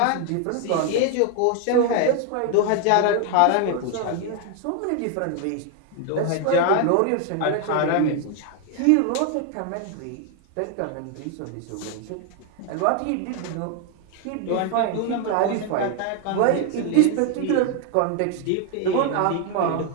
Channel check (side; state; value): both; different; correlation 0.01